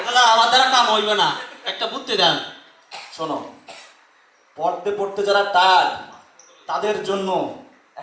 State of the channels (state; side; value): identical; both; correlation 1.00